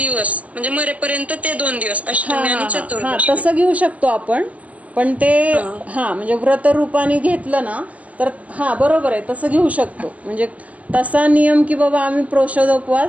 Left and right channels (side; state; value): left; late; 0.071 ms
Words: म्हणजे मरेपर्यंत ते 2 दिवस अष्टमी आणि चतुर्दशी. तसं घेऊ शकतो आपण. पण ते म्हणजे व्रत रूपाने घेतलं ना तर बरोबर आहे, तसं घेऊ शकतो. म्हणजे तसा नियम की बाबा आम्ही